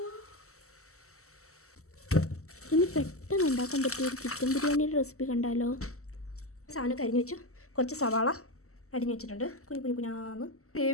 ഇനി പെട്ടെന്ന് ഉണ്ടാക്കാൻ പറ്റിയ ഒരു ചിക്കൻ ബിരിയാണിയുടെ റെസിപ്പി കണ്ടാലോ. സാധനം അരിഞ്ഞു വെച്ചു. കുറച്ച് സവാള അരിഞ്ഞു വെച്ചിട്ടുണ്ട്. കുഞ്ഞാന്ന്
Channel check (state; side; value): late; right; 0.64 ms